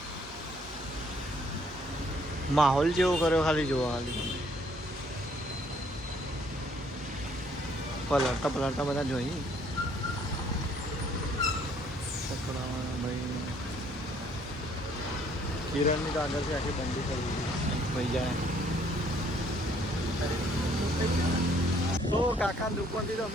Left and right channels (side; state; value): both; normal; correlation 0.64